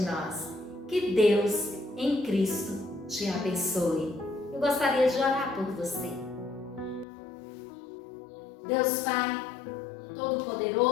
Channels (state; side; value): drops out; right; at 7.1 s